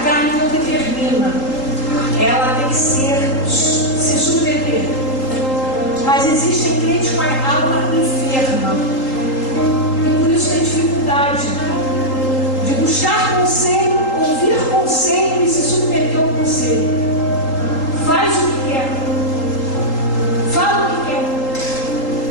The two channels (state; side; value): late; right; 3.8 ms